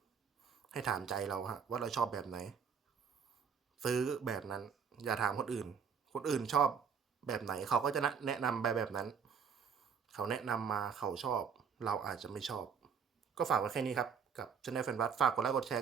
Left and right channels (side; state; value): left; quieter; 6.7 dB